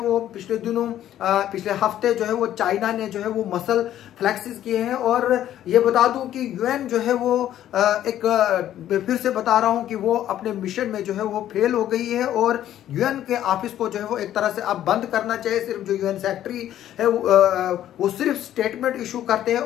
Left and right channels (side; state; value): right; quieter; 11.9 dB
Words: पिछले दिनों पिछले हफ्ते जो है वो चाइना ने जो है वो मसल फ्लैक्सेस किए हैं। और ये बता दूं कि यूएन जो है वो एक फिर से बता रहा हूं कि वो अपने मिशन में जो है वो फेल हो गई है और यूएन के ऑफिस को जो है वो एक तरह से अब बंद करना चाहिए। सिर्फ जो यूएन सेक्रेटरी है वो सिर्फ स्टेटमेंट इशू करते हैं